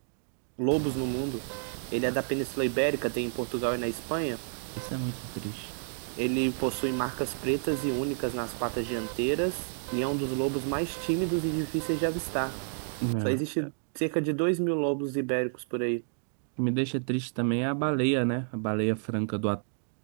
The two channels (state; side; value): silent; left; digital silence